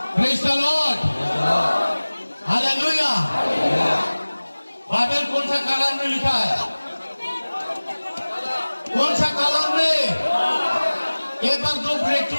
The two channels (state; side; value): inverted; both; correlation -1.00